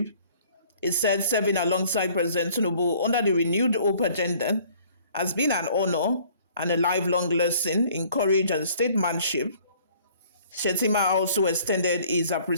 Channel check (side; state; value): both; inverted; correlation -0.56